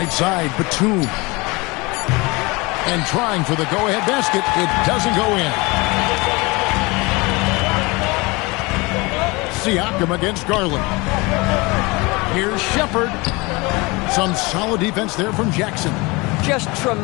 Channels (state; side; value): quieter; right; 25.1 dB